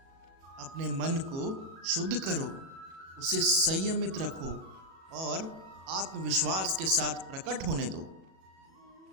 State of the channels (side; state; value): left; late; 37 ms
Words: अपने मन को शुद्ध करो, उसे संयमित रखो और आत्मविश्वास के साथ प्रकट होने दो।